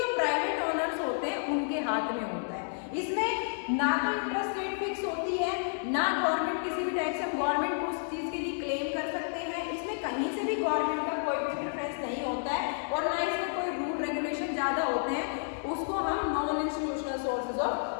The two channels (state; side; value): silent; right; digital silence